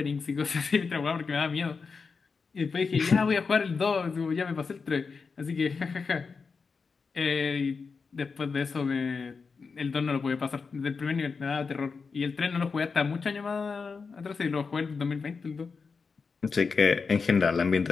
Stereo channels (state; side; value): quieter; right; 5.0 dB